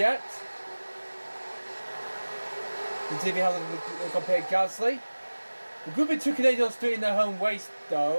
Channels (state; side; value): inverted; both; correlation -1.00